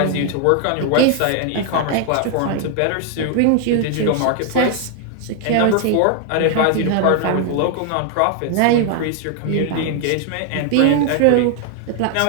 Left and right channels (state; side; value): different; both; correlation 0.00